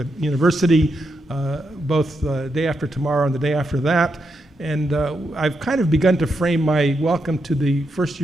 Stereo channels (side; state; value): both; normal; correlation 0.83